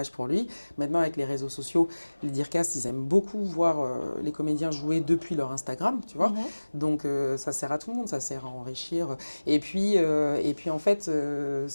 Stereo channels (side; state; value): both; inverted; correlation -1.00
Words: pour lui. Maintenant, avec les réseaux sociaux, les Dircast, ils aiment beaucoup voir les comédiens jouer depuis leur Instagram, tu vois. Mhm. Donc ça sert à tout le monde, ça sert à enrichir. Et puis en fait,